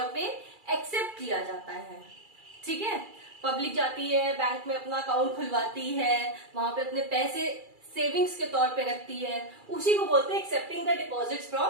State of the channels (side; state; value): left; late; 2.3 ms